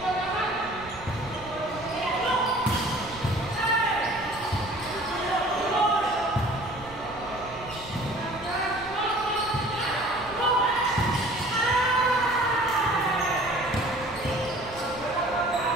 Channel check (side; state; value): right; noise; rumble, 18 dB below the sound